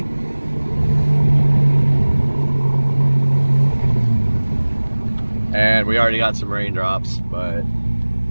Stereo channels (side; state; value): both; inverted; correlation -1.00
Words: And we already got some raindrops, but